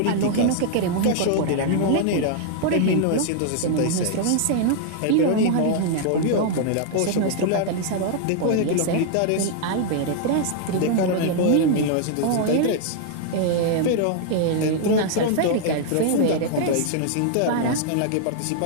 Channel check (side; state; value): both; different; correlation 0.00